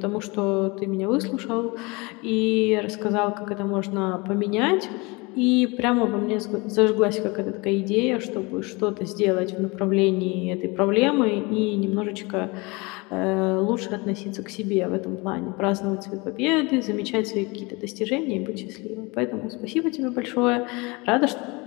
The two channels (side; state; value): right; quieter; 26.4 dB